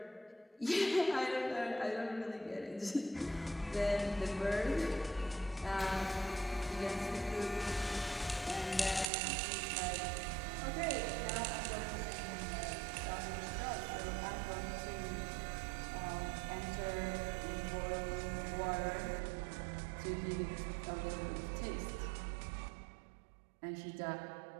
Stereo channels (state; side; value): drops out; left; at 9.1 s